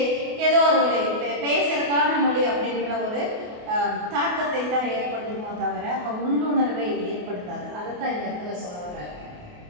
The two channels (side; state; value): left; late; 28 ms